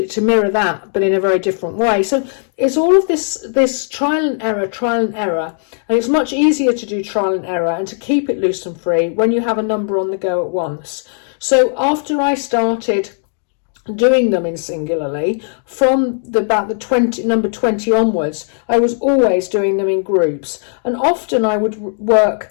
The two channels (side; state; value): right; silent; digital silence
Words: to mirror that, but in a very different way. So it's all of this trial and error, and it's much easier to do trial and error and to keep it loose and free when you have a number on the go at once. So after I started doing them in singularly, from about the number 20 onwards, I was always doing them in groups, and often I would